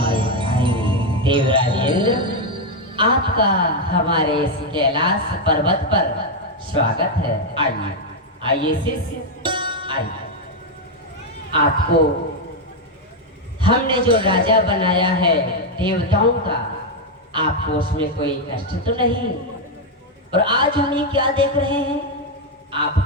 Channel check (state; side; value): normal; both; correlation 0.03